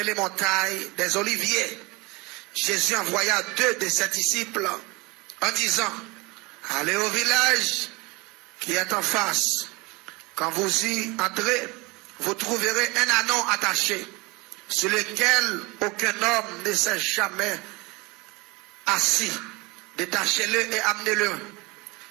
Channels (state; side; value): quieter; left; 24.9 dB